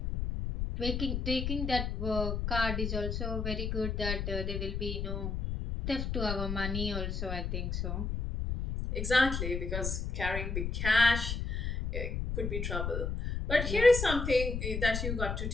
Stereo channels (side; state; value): left; noise; rumble, 2 dB below the sound